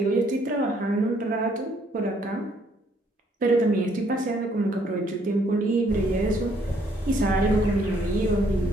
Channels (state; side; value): normal; both; correlation 0.66